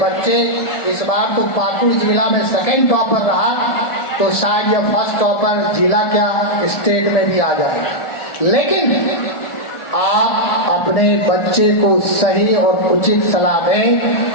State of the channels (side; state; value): right; late; 1.4 ms